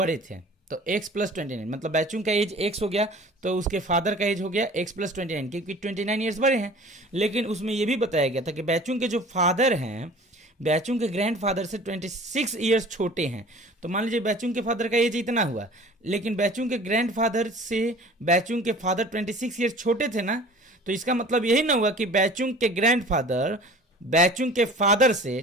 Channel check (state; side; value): normal; both; correlation 0.45